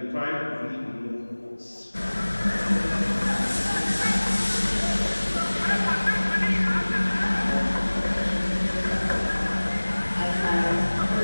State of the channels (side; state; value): both; inverted; correlation -1.00